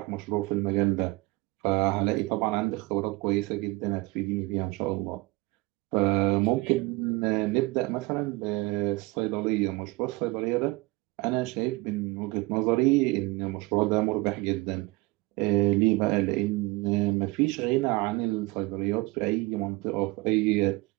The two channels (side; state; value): left; quieter; 23.3 dB